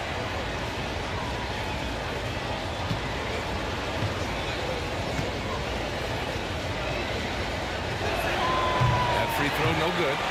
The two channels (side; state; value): both; identical; correlation 1.00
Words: That free throw no good.